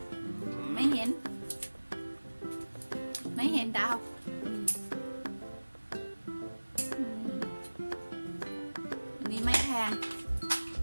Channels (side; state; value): both; inverted; correlation -1.00